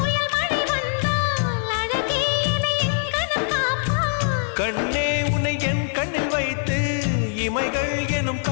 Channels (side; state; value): right; silent; digital silence